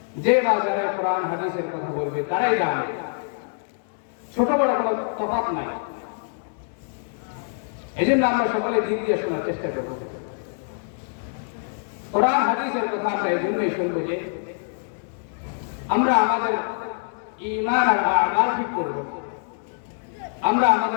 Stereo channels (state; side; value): silent; right; digital silence